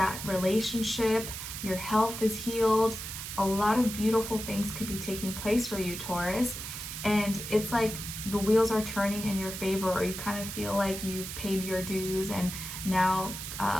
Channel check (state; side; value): noise; right; hiss, 7 dB below the sound